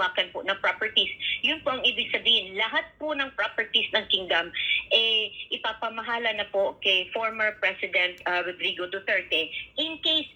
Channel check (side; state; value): both; normal; correlation 0.95